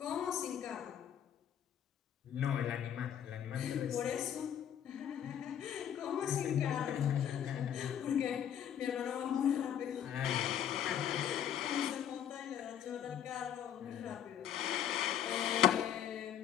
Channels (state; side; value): quieter; right; 9.6 dB